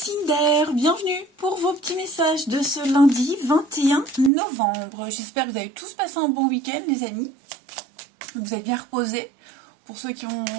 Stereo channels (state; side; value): drops out; left; at 4.3 s